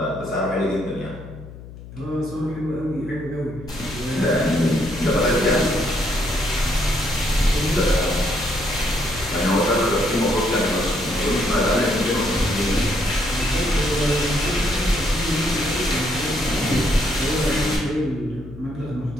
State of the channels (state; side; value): noise; left; hum, 15 dB below the sound